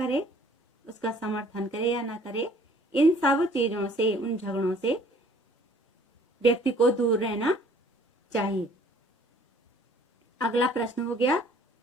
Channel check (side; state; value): both; normal; correlation 0.56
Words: उसका समर्थन करे या ना करे, इन सब चीजों से, उन झगड़ों से व्यक्ति को दूर रहना चाहिए। अगला प्रश्न हो गया